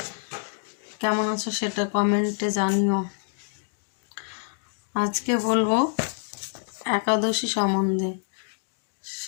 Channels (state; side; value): silent; right; digital silence